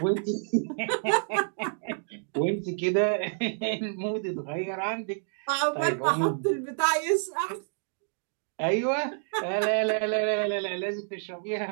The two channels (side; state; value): left; silent; digital silence